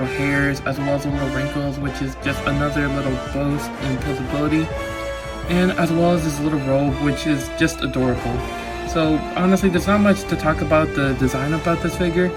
hairs, as well as the little wrinkles, which is just another little boost in visibility. And as well as this little robe, which is just adorable. So honestly, there's not much to talk about the design about this figure,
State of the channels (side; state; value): both; identical; correlation 1.00